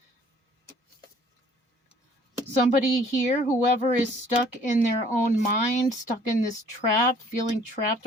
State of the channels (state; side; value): normal; both; correlation 0.57